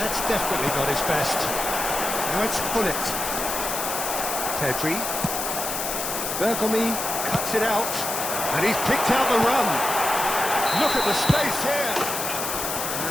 that's definitely not his best. Now it's Hullet. Pedri. Bergomi cuts it out. And he's picked out the run. Look at the space here.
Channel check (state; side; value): noise; left; hiss, 3 dB below the sound